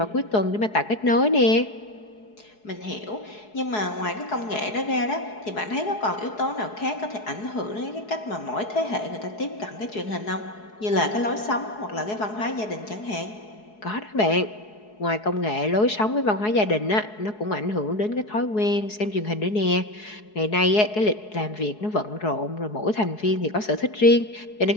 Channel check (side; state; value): right; late; 4.7 ms